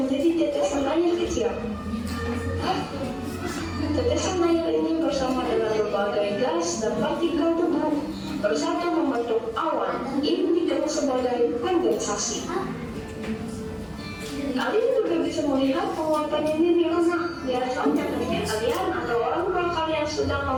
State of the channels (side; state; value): both; identical; correlation 1.00